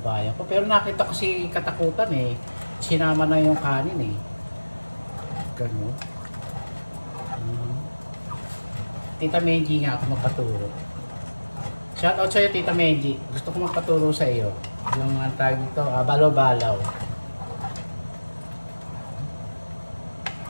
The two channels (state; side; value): inverted; both; correlation -1.00